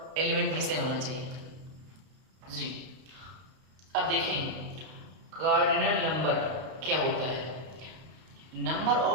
एलिमेंट भी सेम होना चाहिए जी। अब देखें कार्डिनल नंबर क्या होता है? Number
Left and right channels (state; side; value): late; left; 32 ms